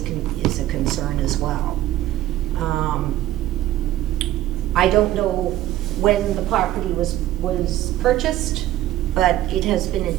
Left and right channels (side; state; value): left; quieter; 14.2 dB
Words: concern as well. I don't know when the property was purchased, but it has been in